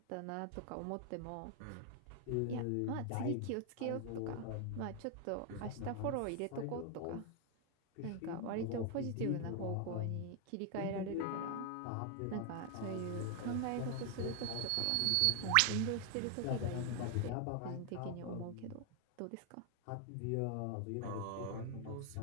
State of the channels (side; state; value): both; different; correlation 0.00